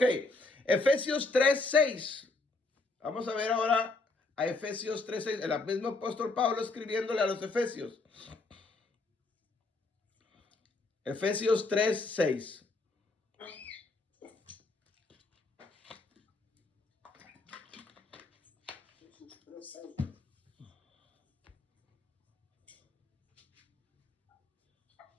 Efesios 3:6. Vamos a ver ahora a Efesios 3:6, el mismo apóstol Pablo escribiéndole a los Efesios. Efesios 3:6.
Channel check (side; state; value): right; quieter; 3.4 dB